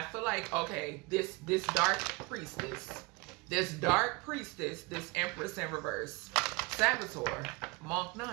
feel like, okay, this dark priestess, this empress in reverse, Saboteur, Monk,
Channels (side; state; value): left; quieter; 26.5 dB